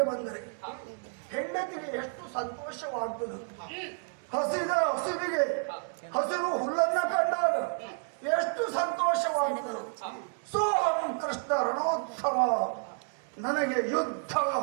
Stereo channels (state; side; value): silent; left; 57 dB below the other